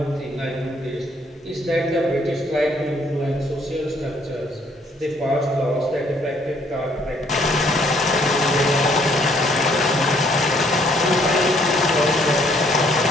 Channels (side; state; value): both; normal; correlation 0.65